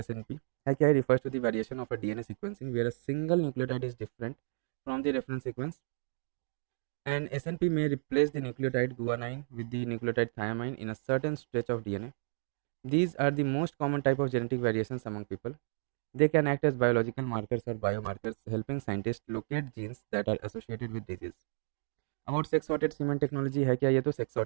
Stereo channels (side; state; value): left; silent; digital silence